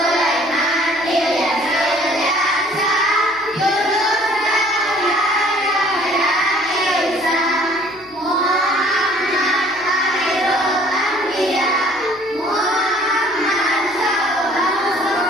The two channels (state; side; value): noise; left; hum, 30 dB below the sound